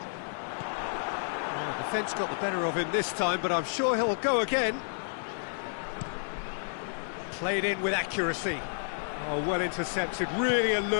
Defence got the better of him this time, but I'm sure he'll go again. Played in with accuracy. Oh, well intercepted, really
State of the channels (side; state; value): right; silent; 57 dB below the other